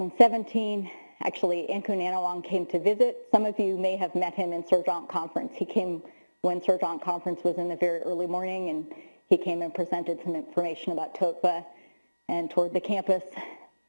actually, Ankun Anawang came to visit. Some of you may have met him in Surgeon Conference. He came when Surgeon Conference was in the very early morning, and he came and presented some information about TOETVA and toured the campus,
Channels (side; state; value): both; inverted; correlation -1.00